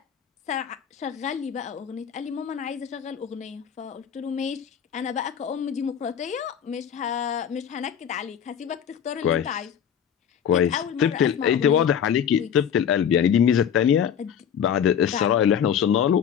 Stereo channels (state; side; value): quieter; right; 8.4 dB